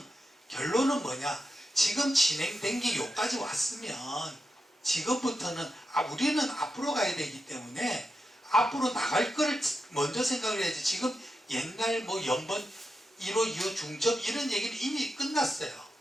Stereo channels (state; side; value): normal; both; correlation 0.88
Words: 결론은 뭐냐? 지금 진행된 게 여기까지 왔으면 지금부터는 우리는 앞으로 가야 되기 때문에 앞으로 나갈 거를 먼저 생각을 해야지. 지금 옛날 연번 1호, 2호 중첩 이런 얘기는 이미 끝났어요.